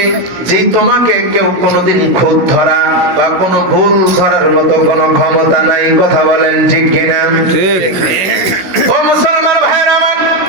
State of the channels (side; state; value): left; late; 16 ms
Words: যেই তোমাকে কেউ কোনোদিন খুঁত ধরা বা কোনো ভুল ধরার মতো কোনো ক্ষমতা নাই। কথা বলেন ঠিক কিনা? ঠিক। ও মুসলমান ভাইরা আমার,